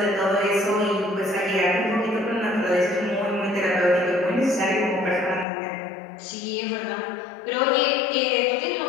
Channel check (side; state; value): right; drops out; at 5.5 s